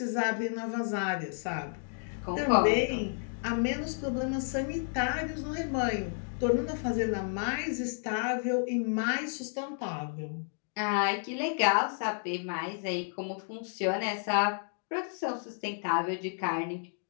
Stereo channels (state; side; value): silent; right; 57 dB below the other